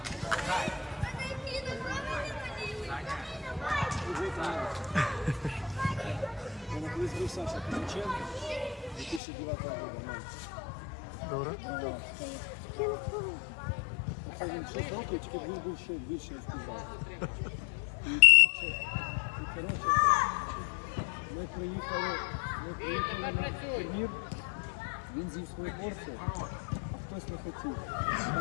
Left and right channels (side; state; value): right; drops out; at 9.2 s